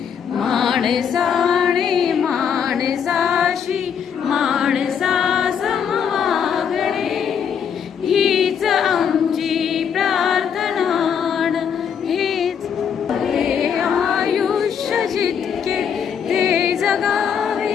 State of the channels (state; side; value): quieter; right; 7.6 dB